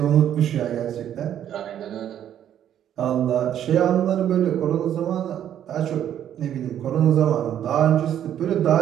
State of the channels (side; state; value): left; quieter; 10.4 dB